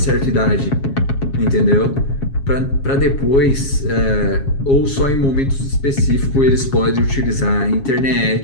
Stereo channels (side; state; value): right; late; 7.3 ms